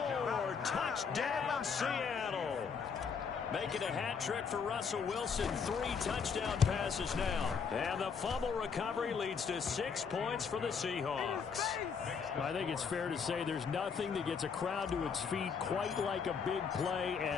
Touchdown, Seattle. Making a hat trick for Russell Wilson. 3 touchdown passes now. And the fumble recovery leads to 6 points for the Seahawks. I think it's fair to say there's nothing that gets a crowd to its feet quite like a big play,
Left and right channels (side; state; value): right; quieter; 6.1 dB